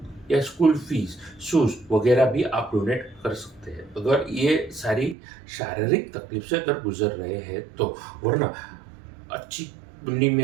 या स्कूल फीस, शूज़ वगैरह भी आप डोनेट कर सकते हैं, अगर ये सारी शारीरिक तकलीफ से अगर गुजर रहे हैं तो। वरना अच्छी कुंडली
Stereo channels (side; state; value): left; drops out; at 5.2 s